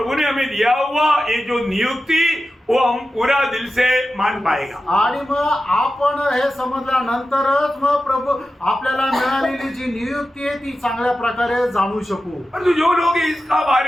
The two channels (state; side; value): normal; both; correlation 0.93